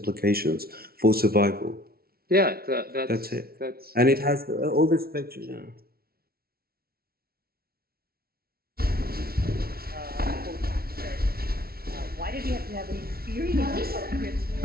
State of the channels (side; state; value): left; late; 0.44 ms